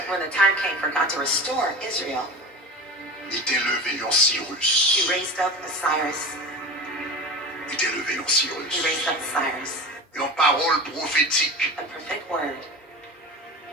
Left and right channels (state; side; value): normal; both; correlation 0.31